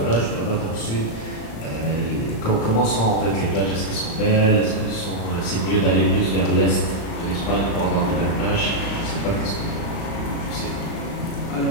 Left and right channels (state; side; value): late; right; 36 ms